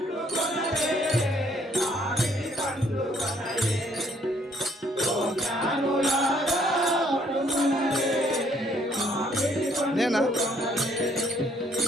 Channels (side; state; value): both; normal; correlation 0.66